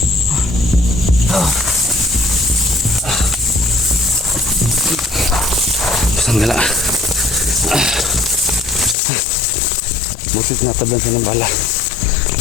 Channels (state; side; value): drops out; right; at 9.0 s